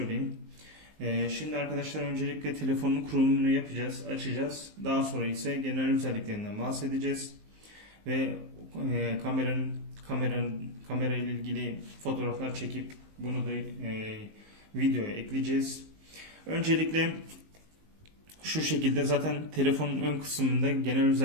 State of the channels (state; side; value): late; left; 19 ms